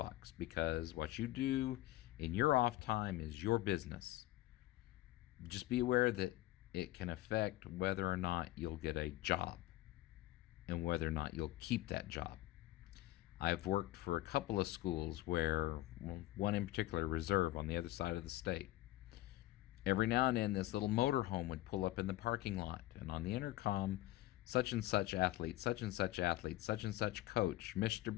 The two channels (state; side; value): quieter; right; 16.7 dB